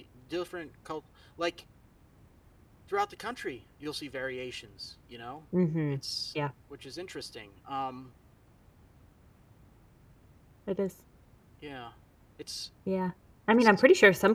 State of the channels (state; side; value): identical; both; correlation 1.00